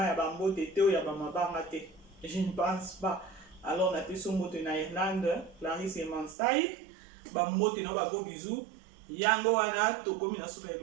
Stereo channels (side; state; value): left; drops out; at 6.4 s